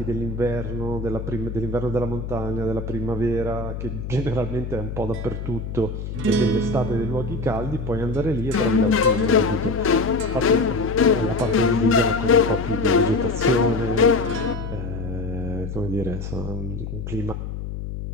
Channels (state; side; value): noise; left; hum, 6 dB below the sound